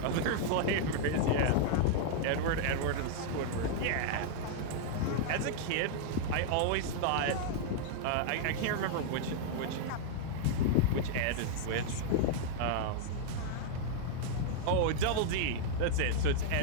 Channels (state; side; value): different; both; correlation -0.01